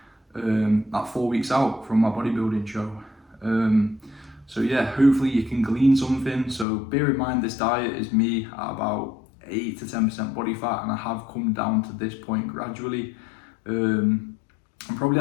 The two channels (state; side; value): drops out; right; at 6.7 s